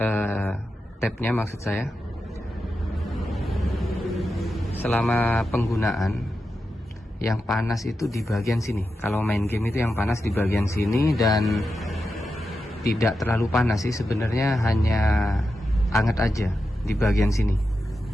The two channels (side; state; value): both; normal; correlation 0.89